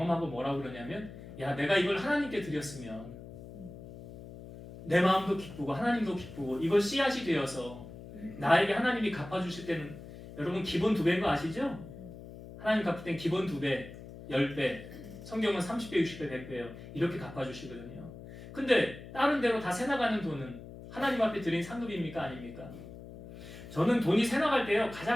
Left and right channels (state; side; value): noise; left; hum, 14 dB below the sound